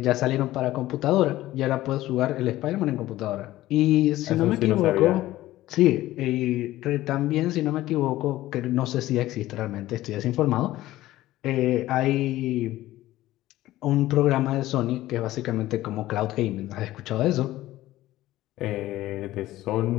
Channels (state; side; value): quieter; right; 15.8 dB